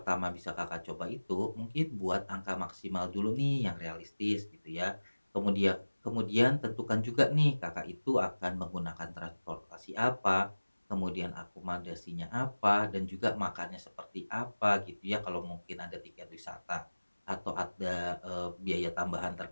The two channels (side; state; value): both; inverted; correlation -1.00